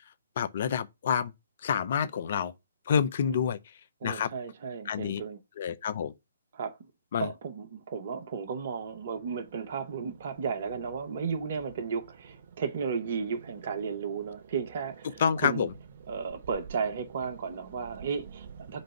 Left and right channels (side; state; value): both; inverted; correlation -0.61